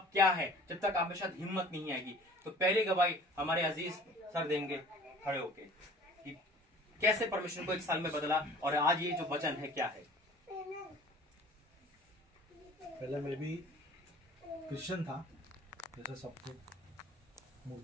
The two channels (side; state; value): both; normal; correlation 0.47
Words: क्या है, जब तक आप में शायद हिम्मत नहीं आएगी। तो पहली गवाही हमारे अजीज सर देंगे खड़े होके कि कैसे परमेश्वर को एक साल में बदला और आज ये जो वचन है क्या है। पहले मैं भी क्रिश्चियन था, जैसे सबको।